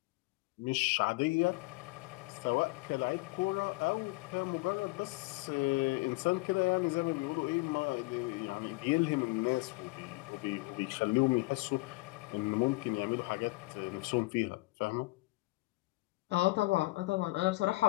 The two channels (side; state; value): right; quieter; 23.3 dB